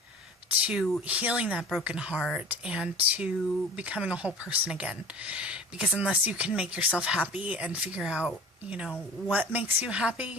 to healing that broken heart and to becoming a whole person again. Because unless you can make yourself happy and figure out, what makes you happy,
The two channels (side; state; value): both; normal; correlation 0.41